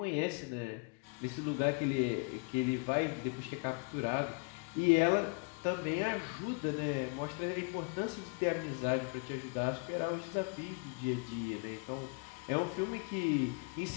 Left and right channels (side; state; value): right; quieter; 33.8 dB